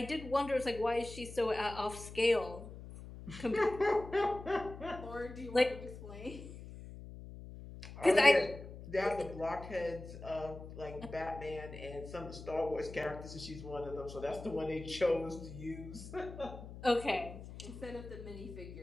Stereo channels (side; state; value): left; noise; hum, 13 dB below the sound